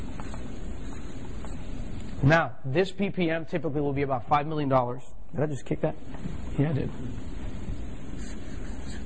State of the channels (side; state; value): both; identical; correlation 1.00